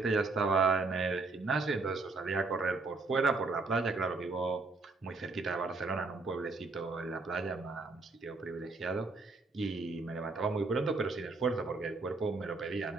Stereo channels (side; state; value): left; quieter; 3.7 dB